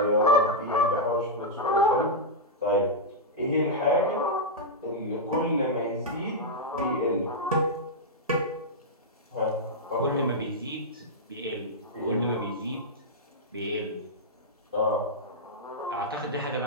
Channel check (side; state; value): both; normal; correlation -0.07